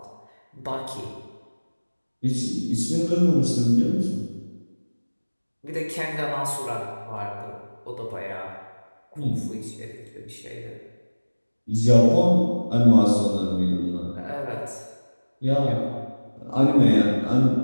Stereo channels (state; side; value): inverted; both; correlation -1.00